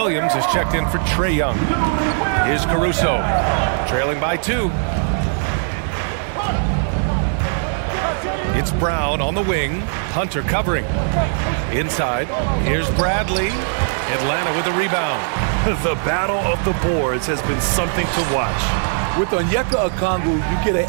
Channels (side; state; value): left; silent; digital silence